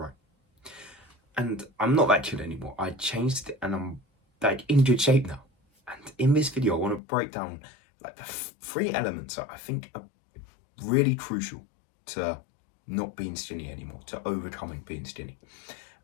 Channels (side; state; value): right; drops out; at 7.0 s